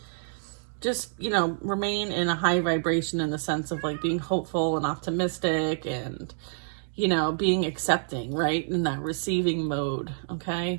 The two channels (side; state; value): left; silent; digital silence